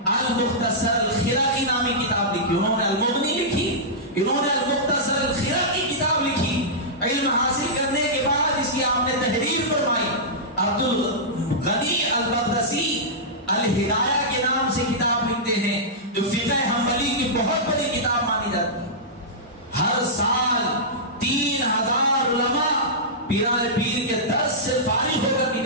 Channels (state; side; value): normal; both; correlation -0.14